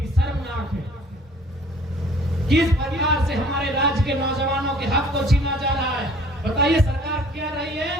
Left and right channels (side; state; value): both; normal; correlation 0.54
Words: शर्मनाक है। किस परिवार से हमारे राज्य के नौजवानों के हक को छीना जा रहा है? बताइए, सरकार कह रही